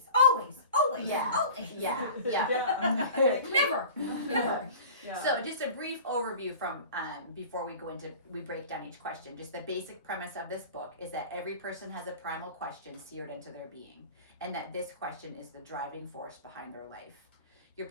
Yeah. Always. Yeah. Never. Yeah. So just a brief overview from before we break down each question. Just the basic premise of this book is that every person has a primal question seared into their being, and that this question is the driving force behind their life. Your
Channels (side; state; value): both; inverted; correlation -0.39